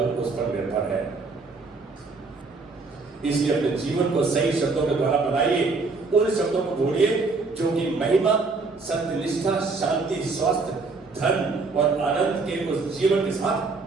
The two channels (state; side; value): quieter; left; 4.0 dB